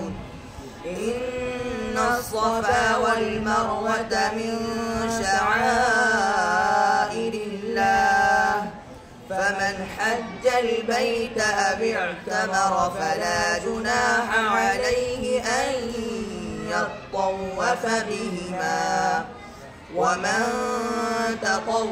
إن الصفا والمروة من شعائر الله فمن حج البيت أو اعتمر فلا جناح عليه أن يطوف بهما ومن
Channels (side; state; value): both; identical; correlation 1.00